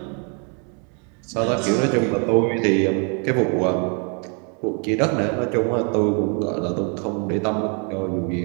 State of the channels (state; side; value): quieter; left; 38.0 dB